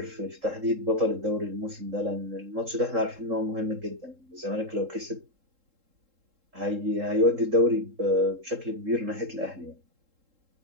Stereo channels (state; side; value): late; left; 3.7 ms